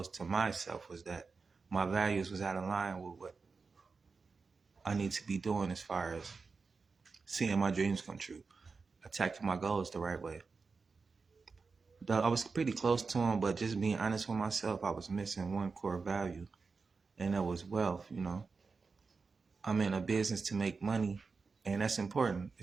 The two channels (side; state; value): left; quieter; 4.6 dB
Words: to myself was that my values was out of line with what I need to be doing as far as seeing my dreams come true, attacking my goals the right way. I was pretty close to them, but just being honest with myself, I was missing one core value, and that was wealth. I'm in a business to make money, and that's important.